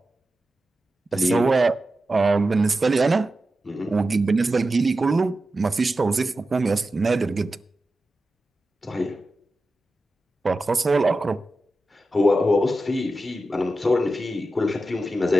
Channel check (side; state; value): both; normal; correlation 0.92